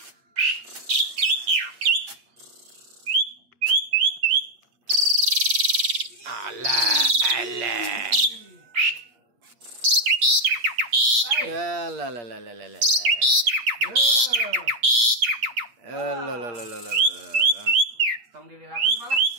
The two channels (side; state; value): left; late; 8.5 ms